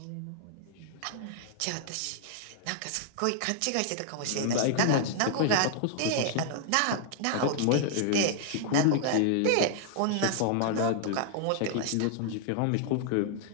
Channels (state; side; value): different; both; correlation -0.01